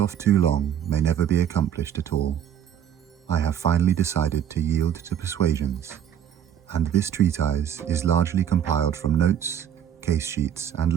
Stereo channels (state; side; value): quieter; left; 9.6 dB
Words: too long may never be accomplished at all, I have finally decided to yield to persuasions, and this treatise is largely compiled from notes, case sheets, and